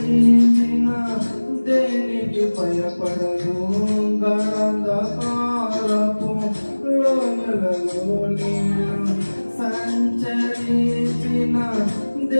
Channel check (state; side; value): inverted; both; correlation -1.00